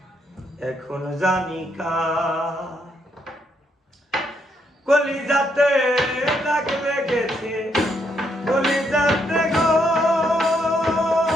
এখন জানি কার। কলিজাতে দাগ লেগেছে, কলিজাতে গো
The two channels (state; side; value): normal; both; correlation 0.76